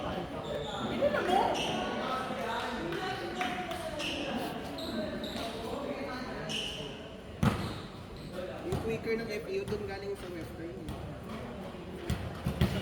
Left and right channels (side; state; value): both; identical; correlation 1.00